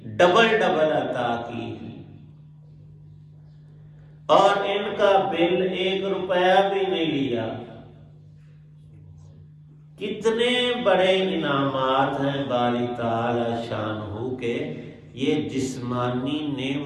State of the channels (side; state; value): both; identical; correlation 1.00